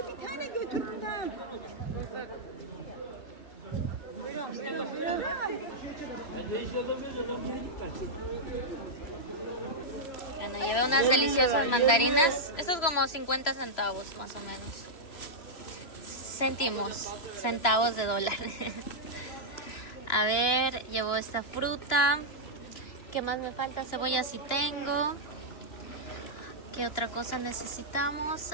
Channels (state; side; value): late; right; 3.0 ms